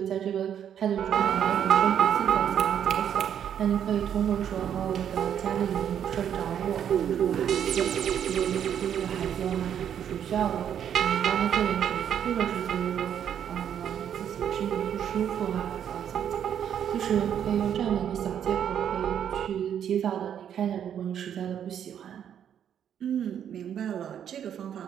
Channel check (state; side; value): quieter; left; 9.2 dB